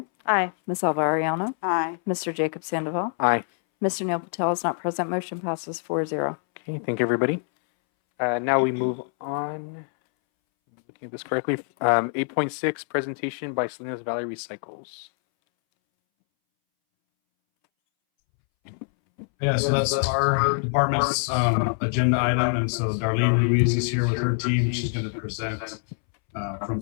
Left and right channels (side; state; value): right; silent; 62 dB below the other